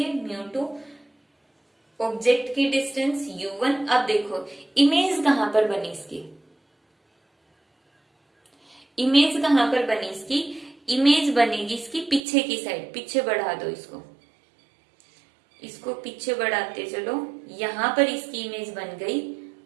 μ2। ऑब्जेक्ट की डिस्टेंस u1। अब देखो इमेज कहां पर बनी इसकी, इमेज कहां पर बनी इसकी, इमेज बनेगी इसकी पीछे की साइड। पीछे बढ़ा दो इसको, इसको पीछे बढ़ाते चलो, यहां पर इसकी इमेज बन गई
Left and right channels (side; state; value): left; drops out; at 12.2 s